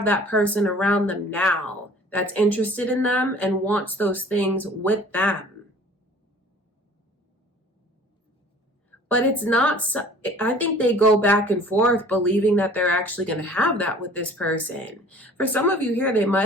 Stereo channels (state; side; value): normal; both; correlation 0.48